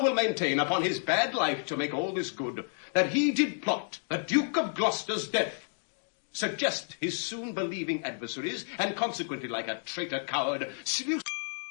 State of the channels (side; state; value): right; silent; 57 dB below the other